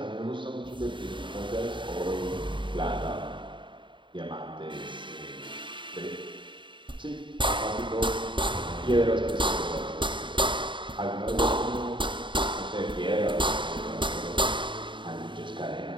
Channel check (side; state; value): left; late; 0.23 ms